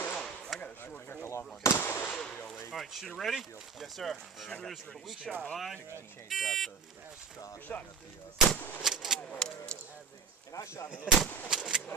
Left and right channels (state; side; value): quieter; left; 5.7 dB